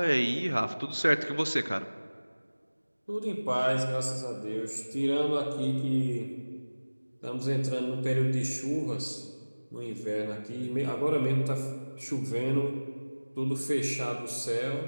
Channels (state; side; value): inverted; both; correlation -1.00